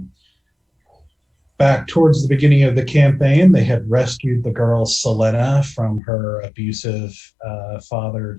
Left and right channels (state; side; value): drops out; right; at 6.0 s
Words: Back towards the beginning of the campaign, they had rescued the girl Sylenna from her abusive father,